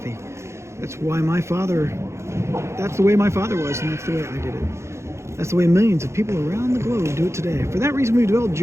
That's the way my father was, and that's the way I did it. That's the way millions of people around the globe do it today. For that reason, we developed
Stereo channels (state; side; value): late; left; 0.13 ms